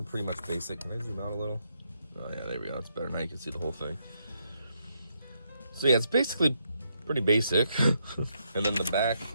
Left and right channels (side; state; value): both; inverted; correlation -0.78